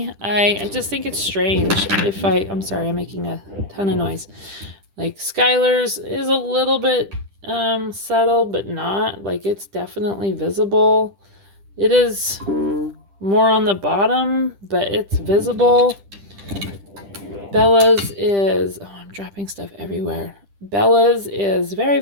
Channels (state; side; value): late; left; 10 ms